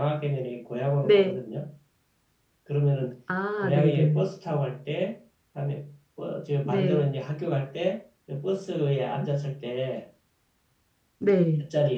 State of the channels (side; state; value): both; identical; correlation 1.00